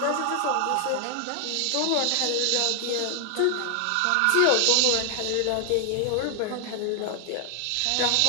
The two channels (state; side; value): different; both; correlation 0.00